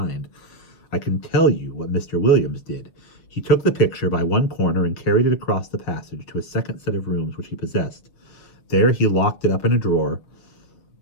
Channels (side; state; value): right; late; 6.3 ms